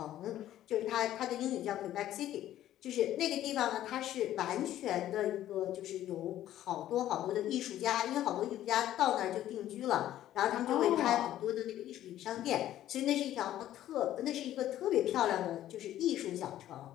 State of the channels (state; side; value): quieter; right; 12.8 dB